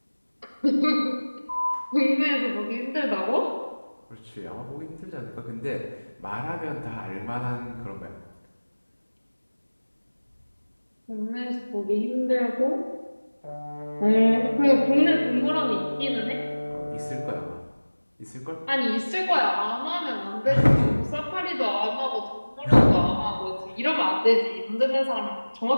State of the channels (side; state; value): both; inverted; correlation -1.00